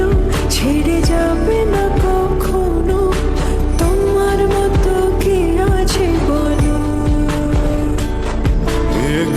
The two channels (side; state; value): both; identical; correlation 1.00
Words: ছেড়ে যাবে না কখনো, তোমার মতো কে আছে বলো। এ